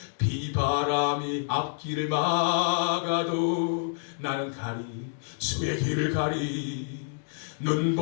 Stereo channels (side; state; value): right; silent; digital silence